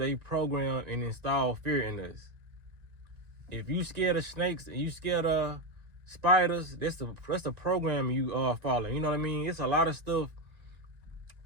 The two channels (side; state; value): left; late; 2.1 ms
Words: program and install fear in us. If you scared of snakes and you scared of spiders, that's the program you are following. You know what I mean? It's a lot of stuff.